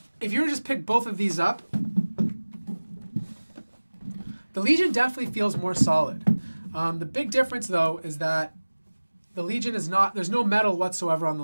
If you were to just pick both of these up, the Legion definitely feels more solid. The big difference, though, is that the Legion is not, there's no metal whatsoever on the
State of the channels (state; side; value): inverted; both; correlation -1.00